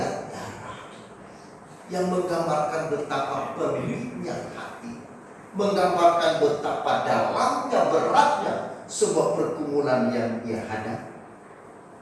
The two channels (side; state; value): both; identical; correlation 1.00